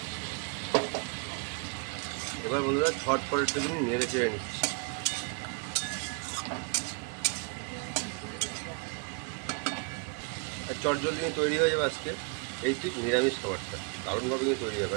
এবার বন্ধুরা ঝটপট একটুখানি নেড়ে চেড়ে নিচ্ছি। আর চট জলদি কিন্তু তৈরি হয়ে যাবে আজকে এই ঠিক নিরামিষ খাবারটা, দারুণভাবে কিন্তু তৈরি হবে।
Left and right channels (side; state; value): left; quieter; 34.4 dB